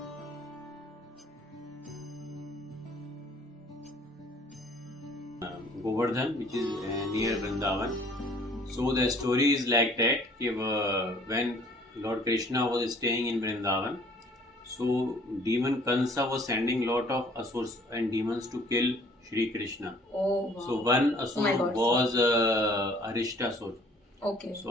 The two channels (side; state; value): both; normal; correlation 0.56